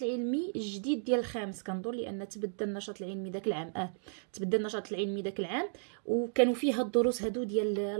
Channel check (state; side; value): silent; left; digital silence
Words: العلمي الجديد ديال الخامس كنظن، لان تبدل النشاط العلمي داك العام تبدل النشاط العلمي داك العام، وكانوا فيه هاد الدروس هادو ديال